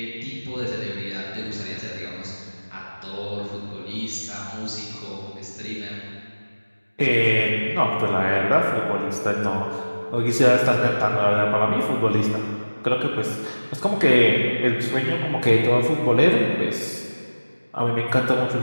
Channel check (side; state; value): both; inverted; correlation -1.00